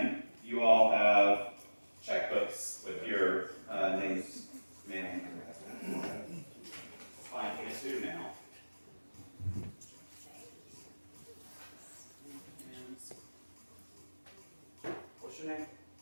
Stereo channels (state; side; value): inverted; both; correlation -1.00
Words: you all have checkbooks with your names made on them. Fine, you do now. What's your name?